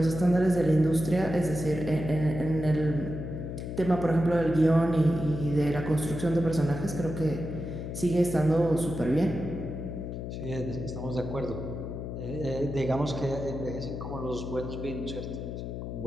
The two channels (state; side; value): noise; left; hum, 6 dB below the sound